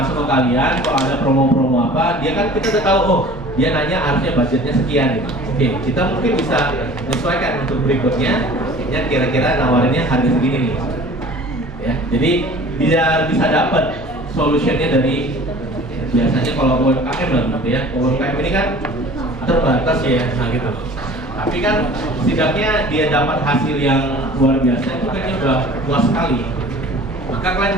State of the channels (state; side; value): normal; both; correlation 0.45